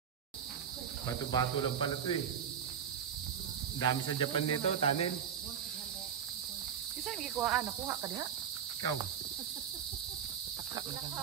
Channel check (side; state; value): left; quieter; 8.3 dB